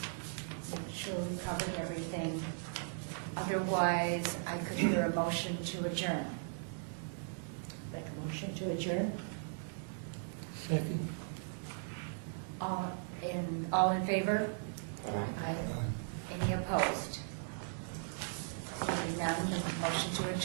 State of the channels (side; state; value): left; silent; digital silence